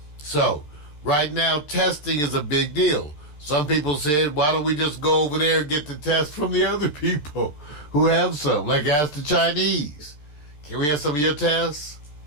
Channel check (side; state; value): right; late; 14 ms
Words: So, right now, testing is a big deal. Some people said, why don't we just go over there and get the test from the other people who have some? Like ask the Chinese. Can we have some of your tests?